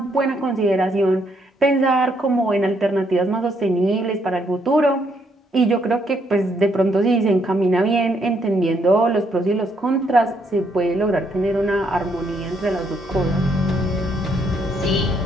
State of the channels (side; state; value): both; normal; correlation 0.73